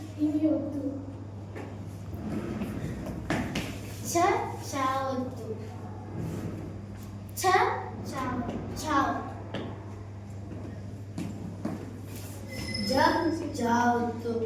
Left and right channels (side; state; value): both; identical; correlation 1.00